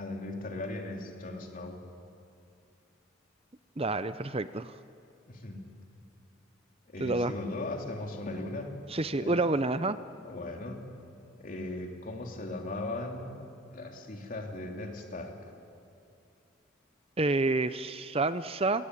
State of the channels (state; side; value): normal; both; correlation 0.40